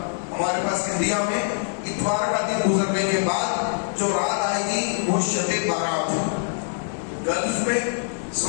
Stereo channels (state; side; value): silent; right; digital silence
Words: ہمارے پاس انڈیا میں اتوار کا دن گزرنے کے بعد جو رات آئے گی وہ شب بارات ہے. گلف میں،